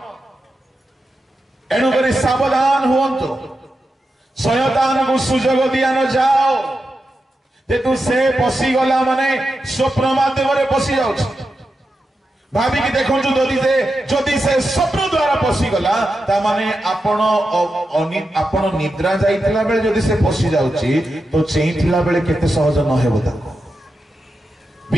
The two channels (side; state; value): both; normal; correlation 0.89